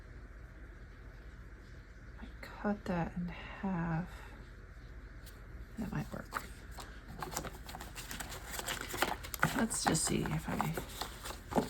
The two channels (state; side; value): identical; both; correlation 1.00